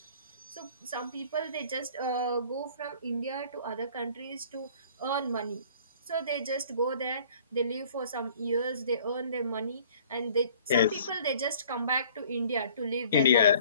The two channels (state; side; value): inverted; both; correlation -0.53